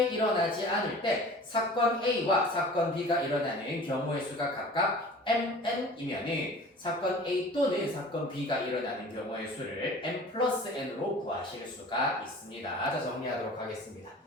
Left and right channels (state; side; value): normal; both; correlation 0.43